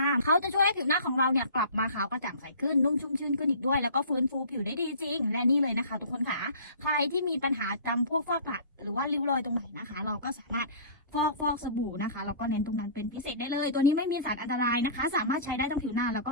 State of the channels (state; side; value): inverted; both; correlation -0.42